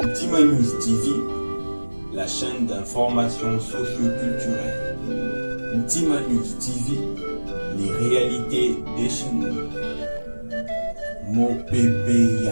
Ntima News TV, la chaîne d'information socio-culturelle. Ntima News TV, les réalités des chez nous. Mon bébé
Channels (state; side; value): inverted; both; correlation -1.00